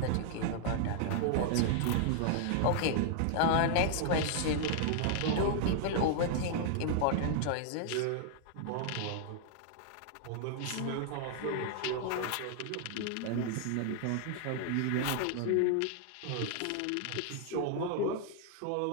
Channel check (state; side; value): different; both; correlation -0.01